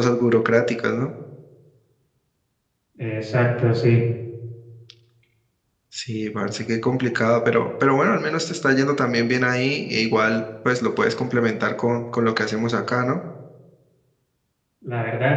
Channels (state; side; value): identical; both; correlation 1.00